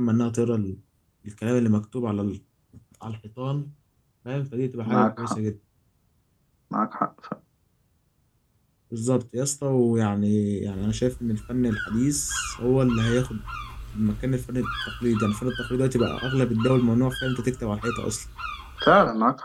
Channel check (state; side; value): identical; both; correlation 1.00